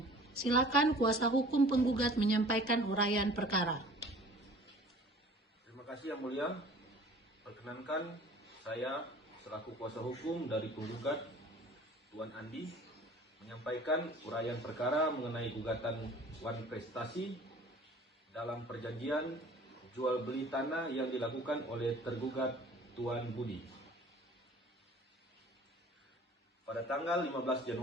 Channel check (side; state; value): both; normal; correlation 0.48